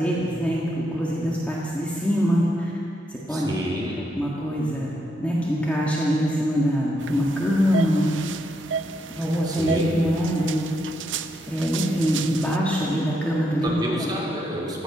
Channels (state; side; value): normal; both; correlation 0.79